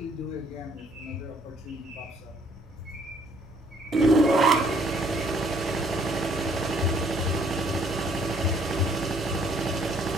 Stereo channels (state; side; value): normal; both; correlation 0.63